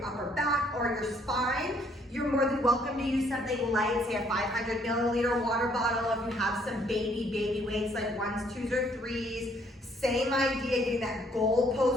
upper back or your spine. You're more than welcome to use something light, say a 500 milliliter water bottle if you have some baby weights like 1s, 2s, or 3s. Same idea, getting that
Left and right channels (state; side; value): normal; both; correlation 0.65